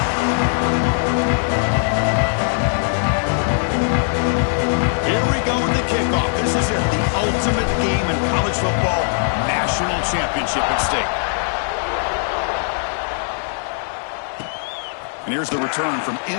And here's the return from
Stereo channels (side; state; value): right; silent; 66 dB below the other